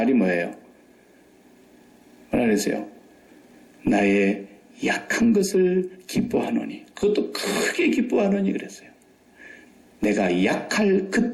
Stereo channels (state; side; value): identical; both; correlation 1.00